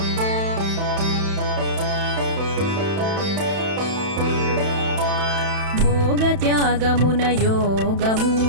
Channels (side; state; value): left; late; 31 ms